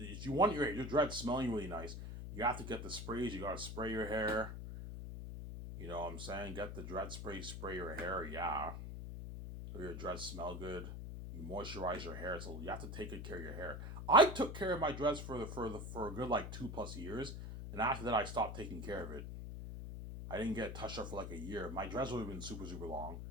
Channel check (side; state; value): left; noise; hum, 7 dB below the sound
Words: you want your dreads smelling really nice, you have to get the sprays. You gotta spray your hair. You know what I'm saying? Get the dread spray, spray your hair. Yeah, so your dreads smell good. You moisturize your hair, so you have to take good care of your hair. I took care of my dreads for a good like 2 plus years, and after that I stopped taking care of it. I didn't get touched up for like a year. My dreads would have been super long.